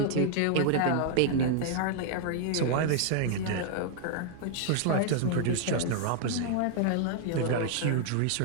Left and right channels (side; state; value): both; different; correlation -0.01